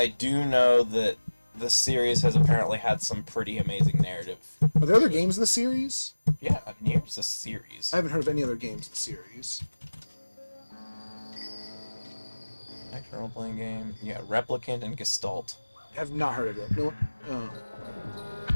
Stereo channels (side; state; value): both; inverted; correlation -1.00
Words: do know that the series has apparently had some pretty amazing narrative. Are there other games in the series? Yeah, Nier's a series. I haven't heard of any other games in the series. Action role-playing game. Yeah, Replicant and Gestalt. I have not heard of it. No. Oh.